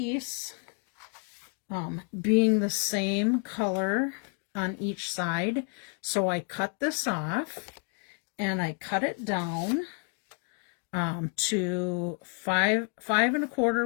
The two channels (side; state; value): right; quieter; 39.9 dB